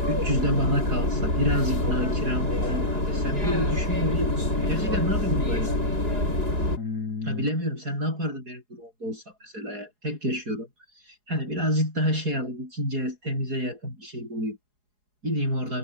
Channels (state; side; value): late; left; 4.8 ms